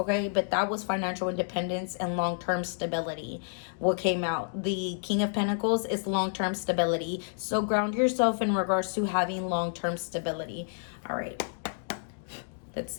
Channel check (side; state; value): right; silent; digital silence